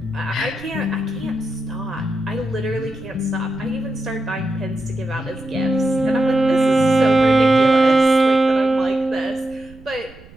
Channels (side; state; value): right; noise; rumble, 22 dB below the sound